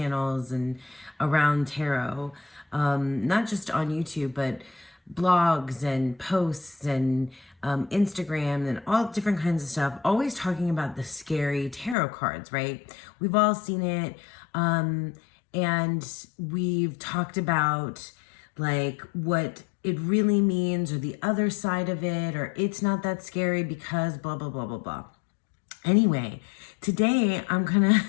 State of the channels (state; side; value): drops out; right; at 12.0 s